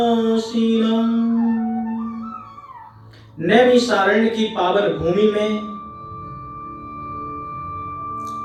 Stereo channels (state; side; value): identical; both; correlation 1.00